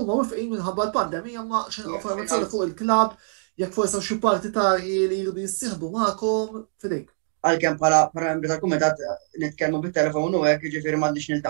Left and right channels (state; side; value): silent; left; digital silence